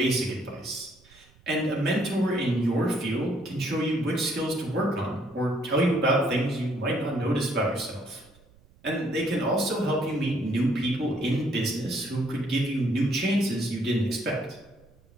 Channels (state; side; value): noise; right; rumble, 29 dB below the sound